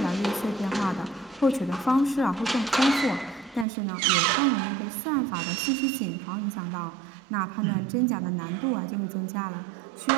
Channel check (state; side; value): drops out; left; at 3.7 s